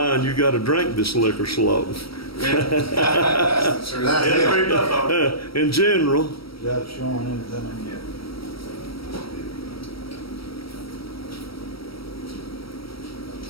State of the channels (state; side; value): late; right; 0.75 ms